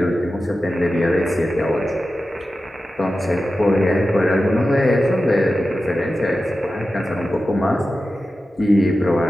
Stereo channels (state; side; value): normal; both; correlation 0.93